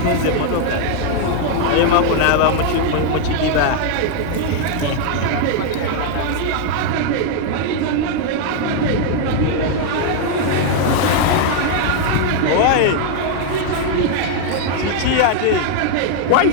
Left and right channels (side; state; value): both; different; correlation 0.00